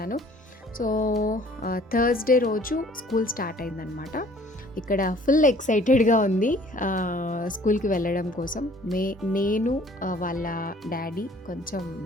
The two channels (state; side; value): normal; both; correlation 0.55